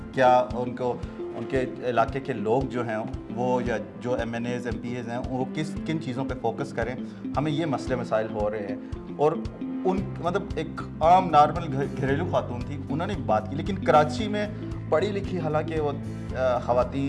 کیا ان کے علاقے کے لوگ جو ہیں وہ، یا جو MNAs MPAs ہیں وہ کن چیزوں پہ فوکس کریں. ہمیں یہ مسئلے مسائل ہو رہے ہیں. اور ان مطلب ایک عام نارمل گھریلو خاتون تھی، انہوں نے بات کی. لیکن کراچی میں پڑھی لکھی حالانکہ وہ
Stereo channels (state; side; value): identical; both; correlation 1.00